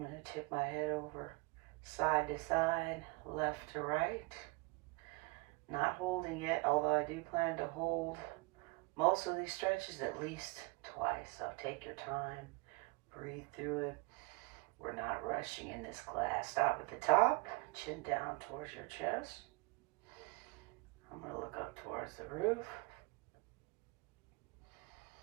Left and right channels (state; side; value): quieter; left; 25.9 dB